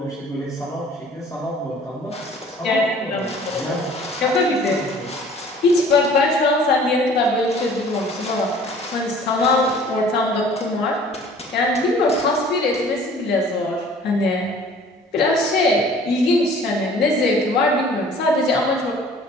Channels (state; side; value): normal; both; correlation 0.51